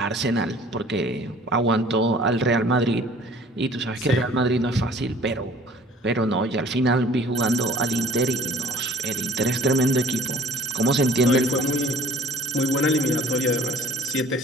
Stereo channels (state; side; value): normal; both; correlation 0.49